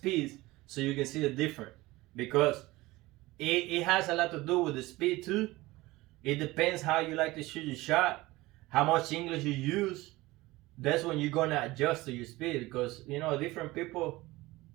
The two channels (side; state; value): left; quieter; 19.8 dB